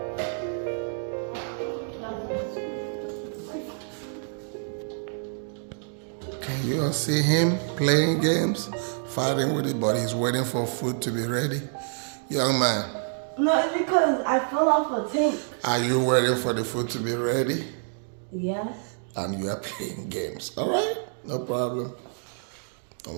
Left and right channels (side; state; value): left; silent; digital silence